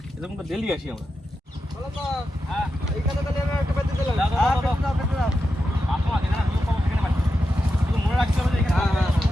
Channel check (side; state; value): both; normal; correlation 0.89